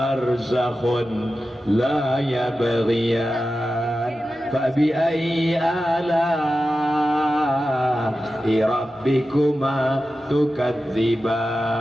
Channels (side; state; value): both; normal; correlation 0.93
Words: la yabghiyan fabi ayyi ala'i rabbikuma